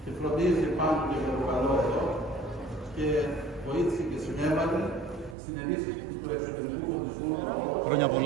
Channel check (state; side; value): drops out; left; at 5.4 s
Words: και φροντίζει πάντοτε για το καλό εδώ και βοήθησε και συνέβαλε στην ενίσχυση του εξωτερικού φωτισμού. Χρόνια